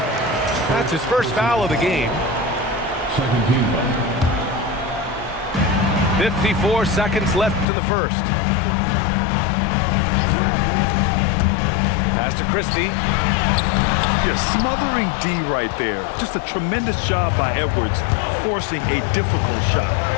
That's his first foul of the game. 54 seconds left in the first. Pass to Christie. You're smothering D right there. Just a tremendous job by Edwards, forcing a difficult shot.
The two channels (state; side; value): drops out; right; at 7.7 s